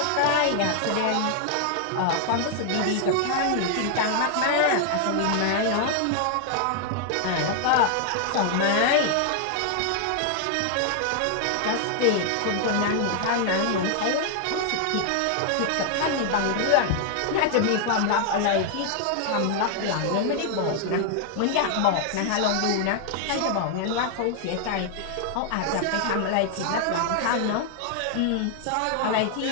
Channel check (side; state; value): both; different; correlation 0.00